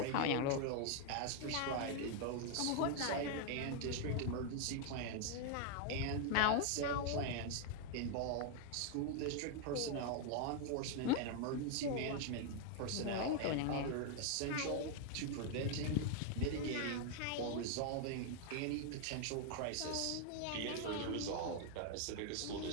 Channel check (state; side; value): different; both; correlation 0.00